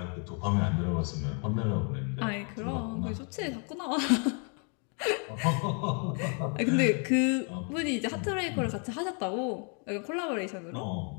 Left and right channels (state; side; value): quieter; right; 38.7 dB